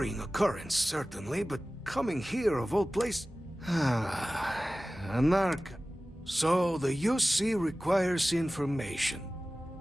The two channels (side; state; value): both; normal; correlation 0.97